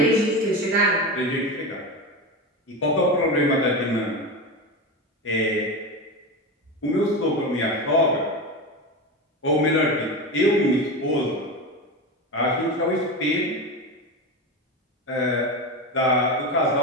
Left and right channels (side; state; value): both; normal; correlation 0.21